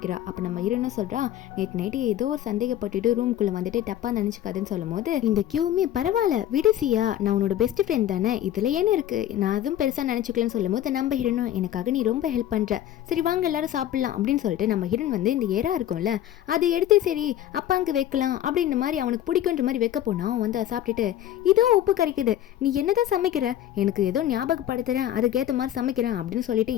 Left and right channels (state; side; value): quieter; right; 12.0 dB